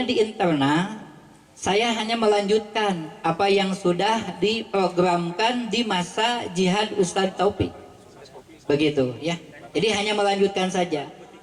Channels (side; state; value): both; identical; correlation 1.00